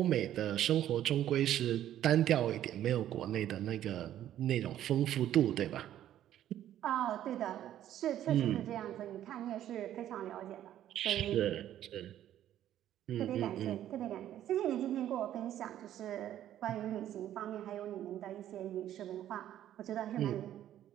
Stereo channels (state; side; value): quieter; left; 11.8 dB